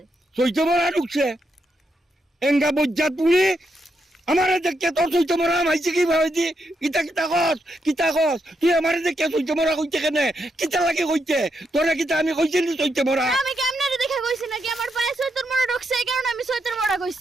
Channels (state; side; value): normal; both; correlation 0.81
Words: চৈতে মরা ঢুকছে। এঙ্গা বজ্জাত পুরি আমারে দেখে তোর চৈতে মরা মাইছে কি ভাইছি? কিতা কস তুই আমারে দেখে চৈতে মরা কইতে কেনে? কিতা লাগে কইতে? তোরে কিতা আমি কইছি নি চৈতে মরা? আমি কেমনে দেখে কইছি নাকি আমার পায়ে চৈতের মরা ঢুকছে এই কারণে আমি চৈতের মরা